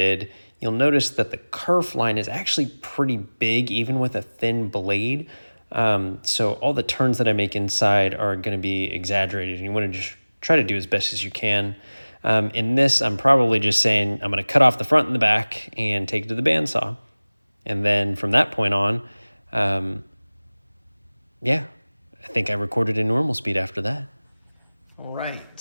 You'll notice that the kerf line is actually pretty big, even with a thin blade. So all the turns that I make inside are gonna be exaggerated, and you wanna just try to do as best as you can. In this, I'm probably just saying I'm gonna cut off the front and the back and take it to the bandsaw. And then from that point on, yeah, I think I recorded in normal speed after that. All right,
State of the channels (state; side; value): inverted; both; correlation -1.00